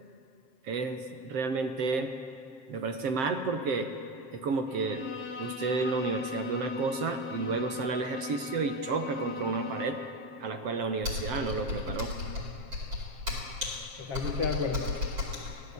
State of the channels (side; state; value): left; late; 7.5 ms